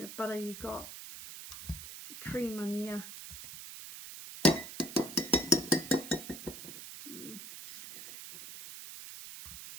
butter, you got cream in there.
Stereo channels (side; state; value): right; noise; hiss, 11 dB below the sound